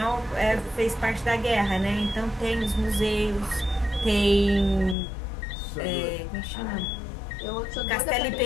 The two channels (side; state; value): right; drops out; at 5.0 s